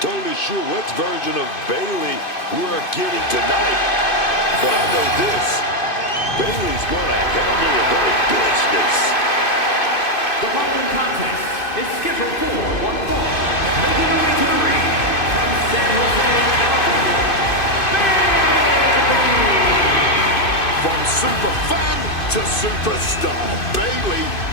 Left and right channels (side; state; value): right; late; 2.5 ms